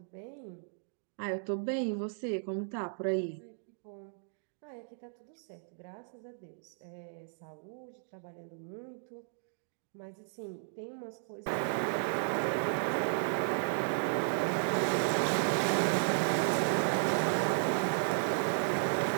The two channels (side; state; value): left; silent; digital silence